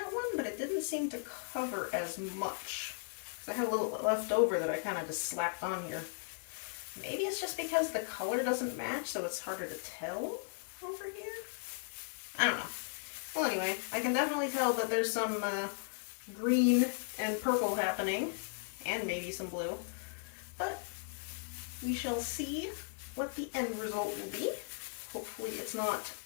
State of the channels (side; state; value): right; silent; digital silence